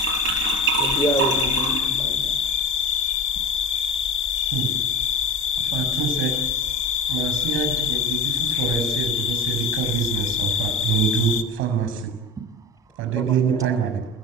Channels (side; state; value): both; normal; correlation 0.33